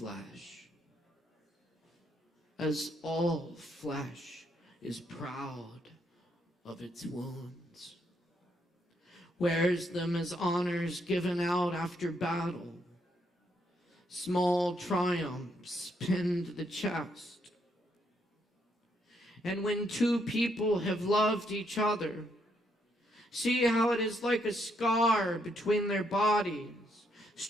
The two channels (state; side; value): normal; both; correlation 0.74